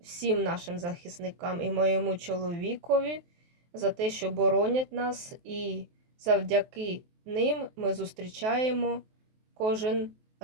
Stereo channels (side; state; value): left; late; 23 ms